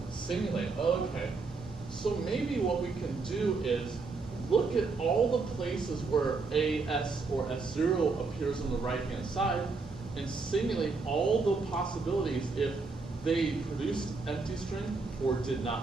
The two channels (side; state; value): left; quieter; 4.2 dB